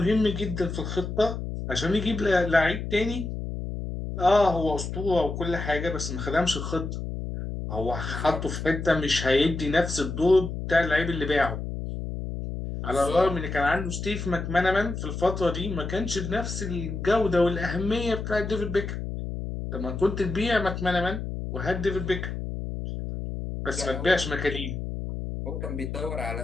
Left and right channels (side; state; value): left; noise; hum, 5 dB below the sound